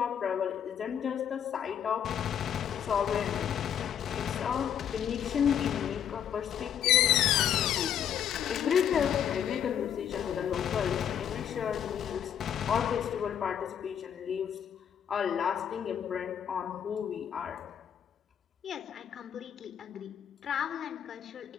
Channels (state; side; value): quieter; right; 9.1 dB